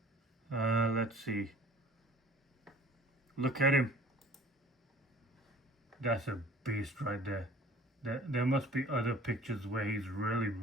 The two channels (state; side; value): normal; both; correlation 0.49